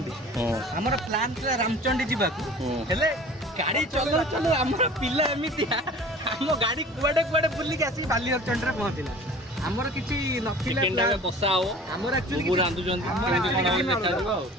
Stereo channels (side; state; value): both; normal; correlation 0.44